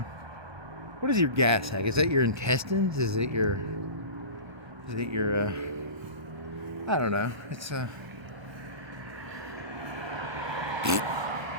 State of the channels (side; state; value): left; late; 1.3 ms